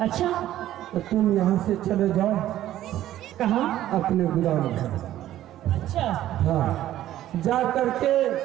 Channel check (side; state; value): left; quieter; 13.2 dB